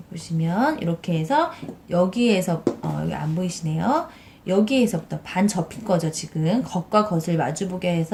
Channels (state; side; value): identical; both; correlation 1.00